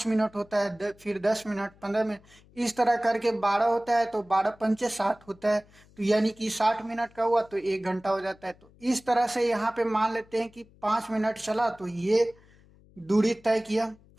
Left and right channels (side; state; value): left; noise; hum, 27 dB below the sound